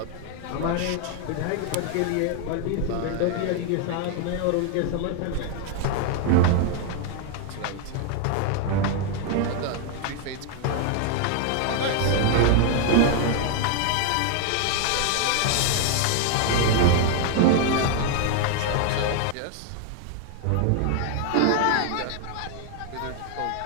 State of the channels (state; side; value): different; both; correlation 0.00